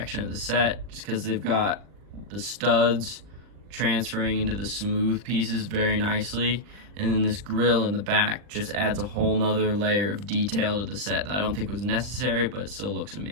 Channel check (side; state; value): left; late; 39 ms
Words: of the set, just because they've got the studs transferring into the smooth pieces very nicely, and then this grill in the back just adds a whole nother layer of detail to the set that I don't think was necessary, but it still looks